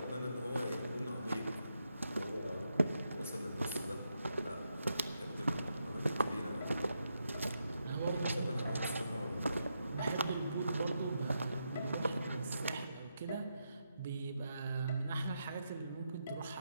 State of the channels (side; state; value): both; inverted; correlation -0.83